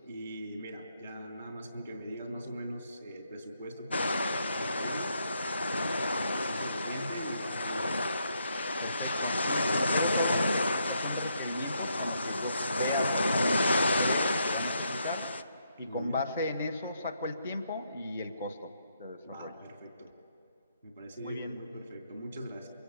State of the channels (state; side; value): inverted; both; correlation -0.76